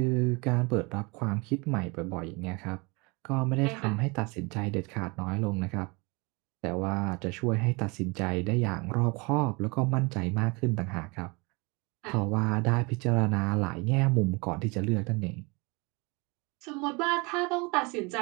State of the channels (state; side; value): quieter; left; 27.8 dB